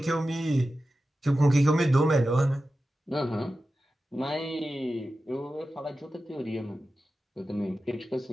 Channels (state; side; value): normal; both; correlation 0.93